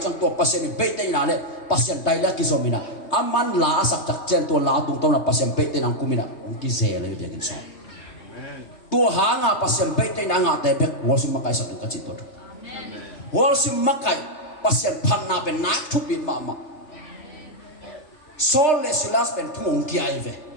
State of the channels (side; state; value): right; late; 3.3 ms